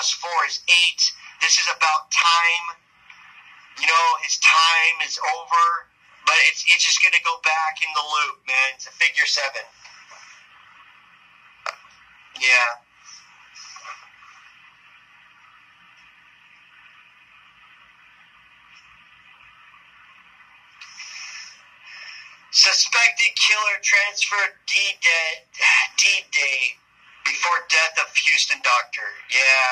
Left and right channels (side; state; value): both; identical; correlation 1.00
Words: 4 is 8. This is about time. You know, his time is over. But it's just going to go back in the loop, man. It's a figure 7. Yeah. Suspected killer transferred D-Day before death of Houston doctor.